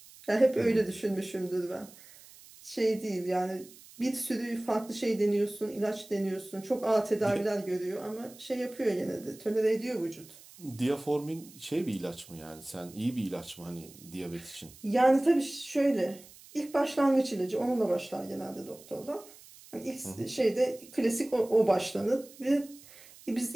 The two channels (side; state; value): right; noise; hiss, 21 dB below the sound